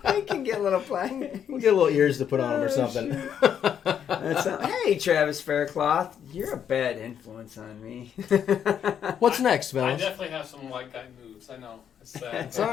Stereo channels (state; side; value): quieter; right; 8.7 dB